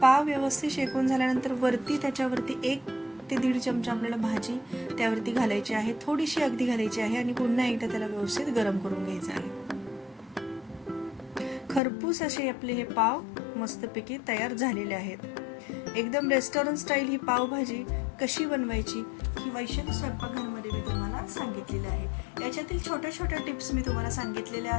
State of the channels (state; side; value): drops out; right; at 11.8 s